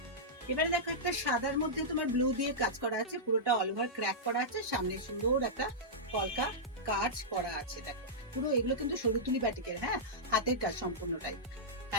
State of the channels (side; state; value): both; normal; correlation -0.12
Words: এবারে দেখো, একটা সাদার মধ্যে তোমার ব্লু দিয়ে কাজ করা আছে, পুরোটা অল ওভার ক্র্যাক করা আছে, সামনে সুন্দর একটা কলকা কাজ করা আছে। দেখো, পুরো এগুলো কিন্তু সরুতুলি বাটিকের, হ্যাঁ, হাতের কাজ সম্পূর্ণটাই।